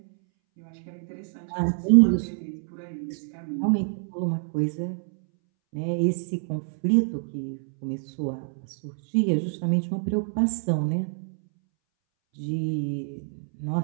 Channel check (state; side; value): silent; left; 60 dB below the other